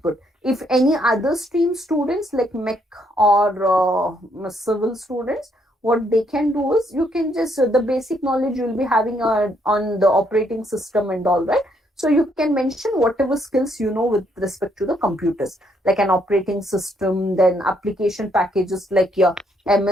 If any other stream students like mech or civil students, what they can do is you can just the basic knowledge you will be having on the operating system and all, right? So you can mention whatever skills you know with respect to the computers, like an operating system, then application packages like your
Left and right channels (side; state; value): both; normal; correlation 0.72